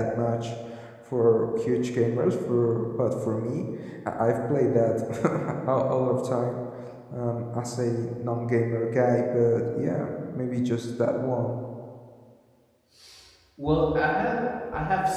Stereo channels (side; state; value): both; identical; correlation 1.00